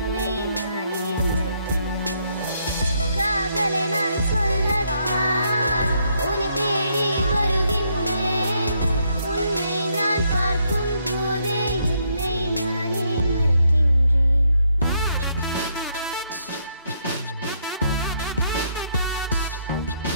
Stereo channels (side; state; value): both; inverted; correlation -0.74